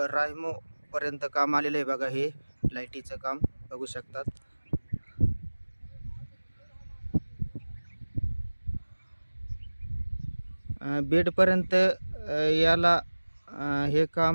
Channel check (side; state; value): both; inverted; correlation -1.00